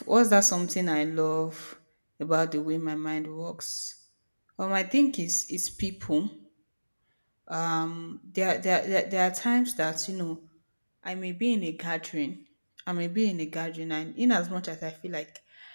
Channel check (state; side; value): inverted; both; correlation -1.00